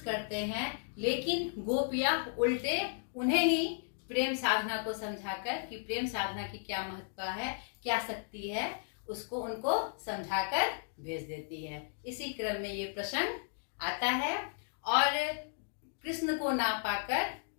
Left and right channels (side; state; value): right; silent; digital silence